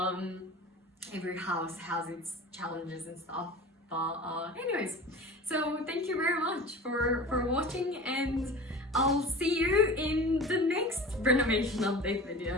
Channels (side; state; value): both; normal; correlation 0.36